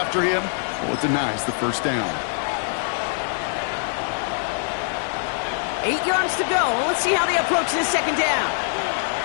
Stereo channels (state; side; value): silent; right; digital silence